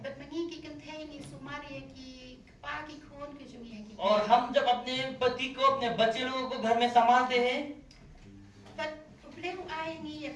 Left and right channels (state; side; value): identical; both; correlation 1.00